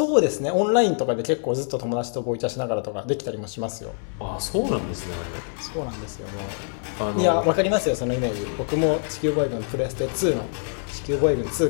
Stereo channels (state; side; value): silent; right; digital silence